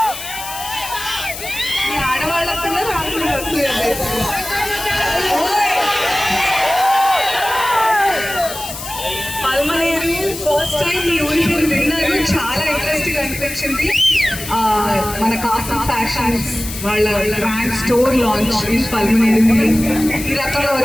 ఫస్ట్ టైం ఈ ఊరి పేరు విన్నాను, చాలా ఇంట్రెస్టింగ్ అనిపించింది. మన కాసం ఫ్యాషన్స్ వాళ్ళ brand store launch in Palamaner. ఈ రకంగా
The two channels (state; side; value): noise; left; hiss, 10 dB below the sound